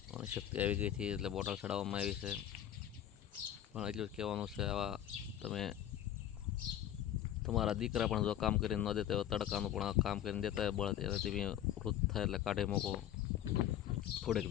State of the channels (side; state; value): right; quieter; 11.1 dB